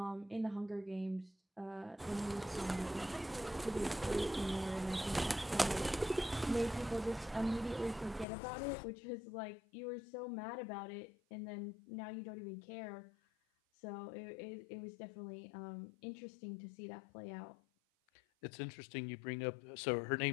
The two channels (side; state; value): right; drops out; at 8.2 s